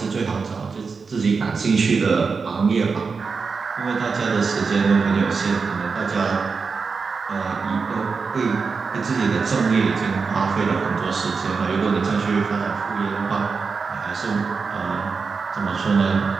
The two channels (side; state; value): left; quieter; 5.0 dB